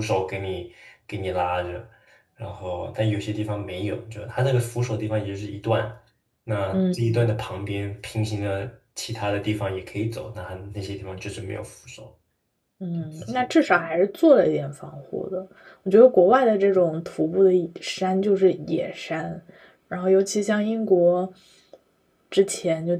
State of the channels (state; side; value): identical; both; correlation 1.00